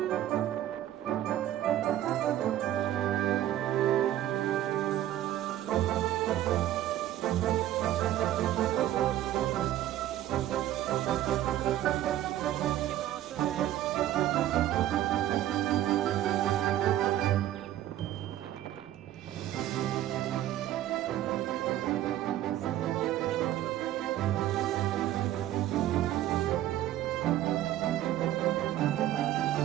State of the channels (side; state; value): left; quieter; 12.9 dB